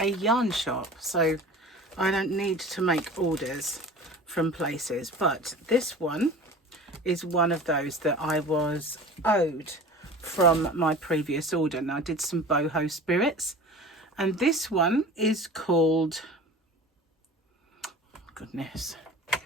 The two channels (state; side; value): normal; both; correlation 0.39